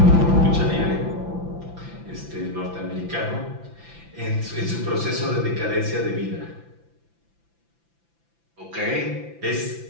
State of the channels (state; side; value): late; left; 5.9 ms